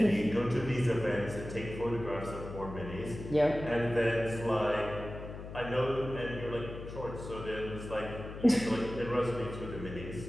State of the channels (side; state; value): left; noise; hum, 10 dB below the sound